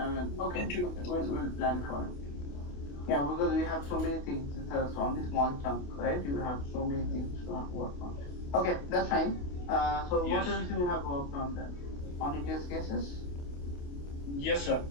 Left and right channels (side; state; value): right; late; 28 ms